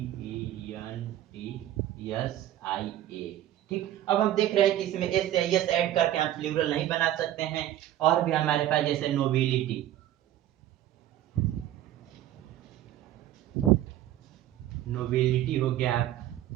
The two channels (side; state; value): left; quieter; 12.8 dB